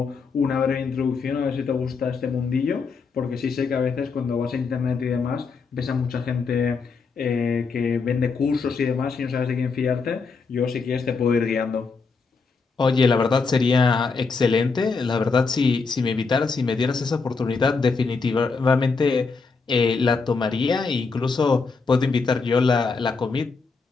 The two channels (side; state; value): right; quieter; 4.7 dB